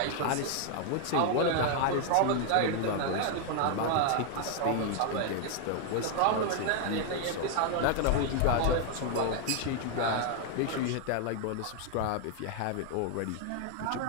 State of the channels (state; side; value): different; both; correlation 0.00